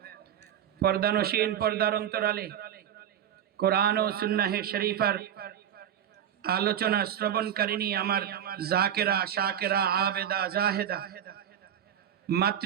পর্দানশীন পর্দার অন্তরালে কোরআন ও সুন্নাহ শরীফার আলোচনা শ্রবণকারিণী আমার জাকেরা শাকেরা আবেদা জাহেদা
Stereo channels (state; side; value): quieter; left; 9.8 dB